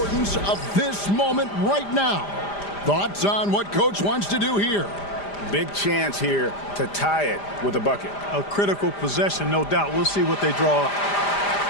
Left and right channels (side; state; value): right; late; 5.0 ms